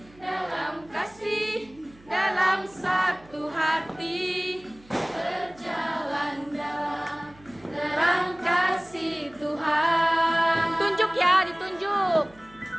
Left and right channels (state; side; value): noise; right; hum, 26 dB below the sound